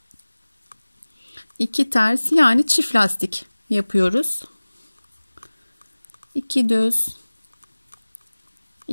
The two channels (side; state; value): both; inverted; correlation -1.00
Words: 2 ters, yani çift lastik yapıyoruz. 2 düz,